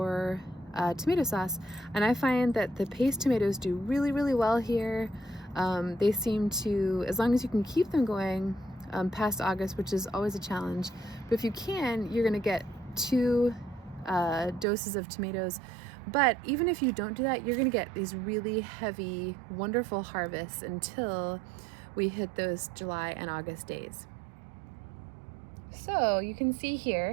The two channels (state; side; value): drops out; left; at 14.7 s